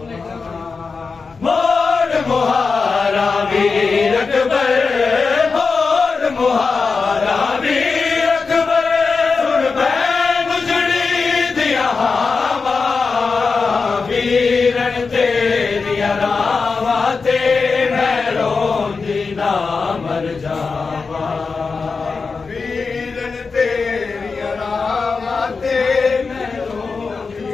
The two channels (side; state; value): right; quieter; 4.7 dB